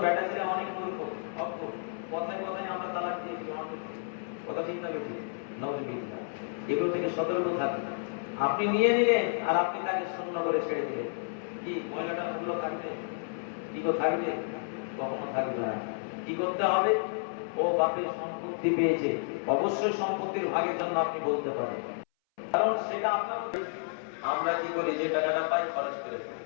বেটা ছেলে অনেক মূর্খ, কথায় কথায় আমরা তালাক দিয়ে কথা ঠিক না বেশি নজবিল্লা, এগুলো থেকে সতর্ক থাকবেন। আপনি নিয়ে নিলেন আর আপনি তাকে শূন্য করে ছেড়ে দিলেন, কি মহিলাটার মূল্য থাকবে? কি থাকবে? কখনো থাকবে না। কি করতে হবে? ও বাপের সম্পত্তি পেয়েছে, অবশ্যই সম্পত্তির ভাগের জন্য আপনি বলতে পারেন, কারণ সেটা আপনার। আমরা কি করি? যে টাকাটা পাই খরচ করে ফেলি,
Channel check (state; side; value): silent; right; 57 dB below the other